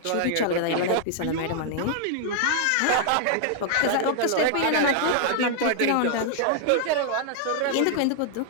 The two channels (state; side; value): different; both; correlation 0.00